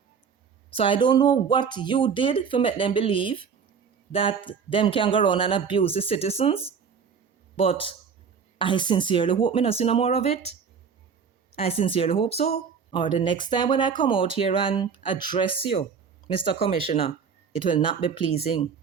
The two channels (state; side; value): quieter; left; 6.4 dB